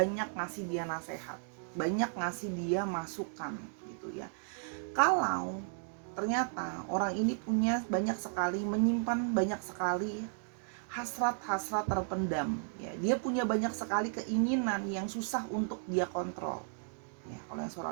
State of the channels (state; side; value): silent; left; digital silence